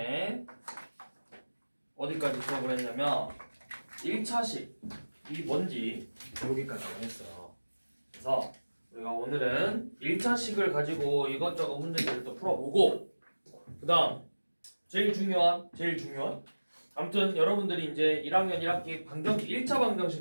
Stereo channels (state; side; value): inverted; both; correlation -1.00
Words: 어디까지 수업을 했냐면 1차식이 뭔지 여기까지 했어요. 그래서 우리가 오늘은 1차식을 가지고 이것저것 문제들을 또 풀어보고, 그 다음 제일 중요한 아무튼 여러분들이 이제 1학년 1학기 1차